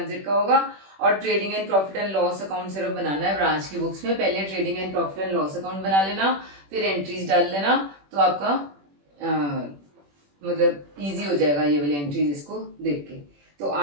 का होगा, और trading and profit and loss account सिर्फ बनाना है branch की books में। पहले trading and profit and loss account बना लेना, फिर एंट्रीज डाल लेना, तो आपका मतलब इजी हो जाएगा ये वाली एंट्रीज इसको देख के। तो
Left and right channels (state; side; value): late; left; 21 ms